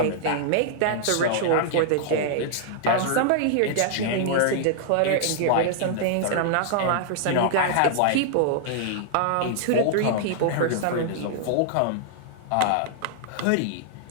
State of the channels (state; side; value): different; both; correlation -0.01